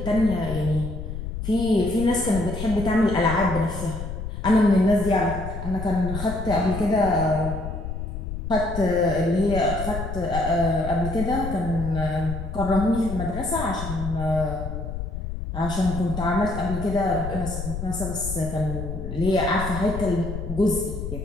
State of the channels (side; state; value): left; noise; rumble, 6 dB below the sound